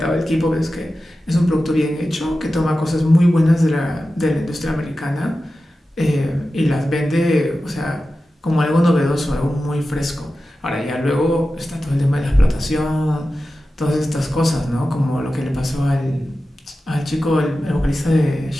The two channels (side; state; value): both; normal; correlation 0.93